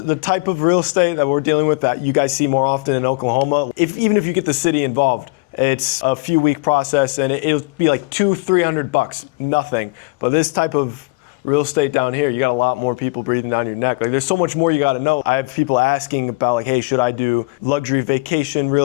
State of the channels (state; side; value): quieter; right; 26.6 dB